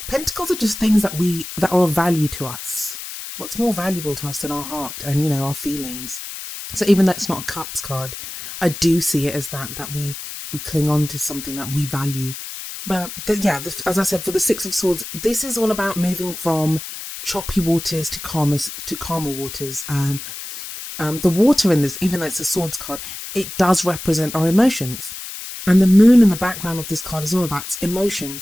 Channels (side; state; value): left; noise; hiss, 10 dB below the sound